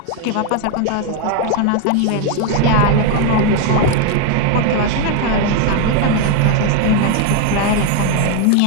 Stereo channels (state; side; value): different; both; correlation 0.01